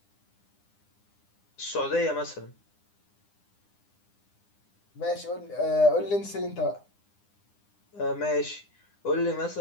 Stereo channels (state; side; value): late; right; 9.9 ms